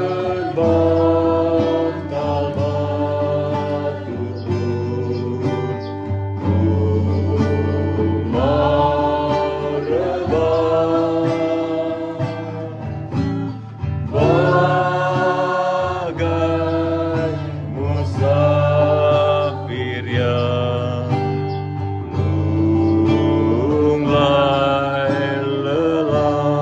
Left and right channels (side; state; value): both; identical; correlation 1.00